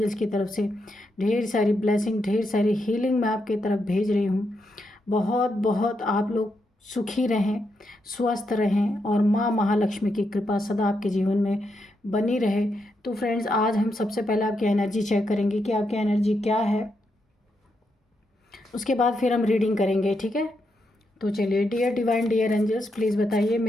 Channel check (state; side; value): normal; both; correlation 0.82